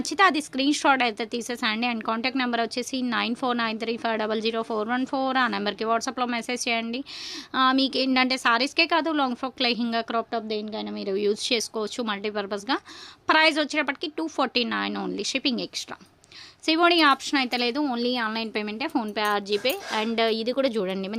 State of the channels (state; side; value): identical; both; correlation 1.00